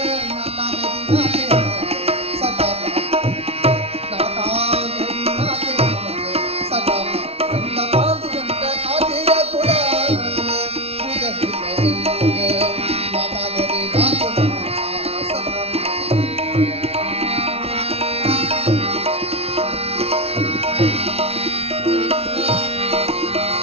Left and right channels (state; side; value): late; left; 0.30 ms